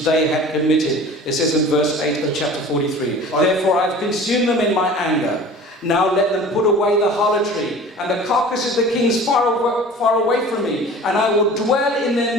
they had committed. It says in verse 8 of chapter 43. Therefore I have consumed them in my anger. Now let them put away the harlotry and the carcasses of the kings far away from me, and I will dwell in their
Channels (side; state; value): both; normal; correlation 0.42